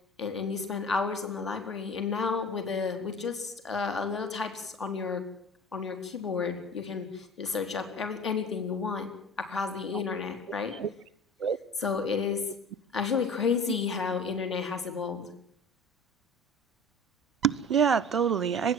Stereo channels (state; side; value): normal; both; correlation 0.39